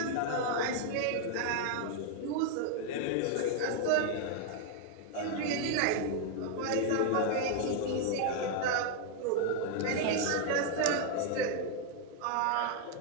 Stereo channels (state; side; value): different; both; correlation 0.00